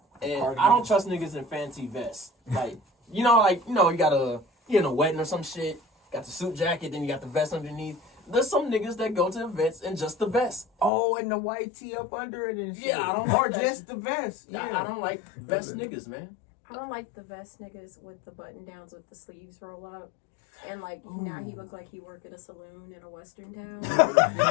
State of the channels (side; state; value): right; drops out; at 10.9 s